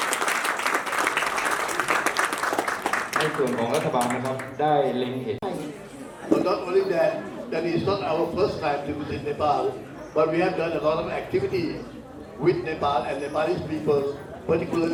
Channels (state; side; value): identical; both; correlation 1.00